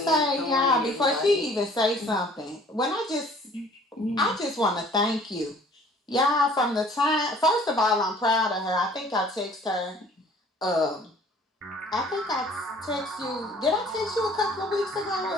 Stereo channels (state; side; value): normal; both; correlation 0.54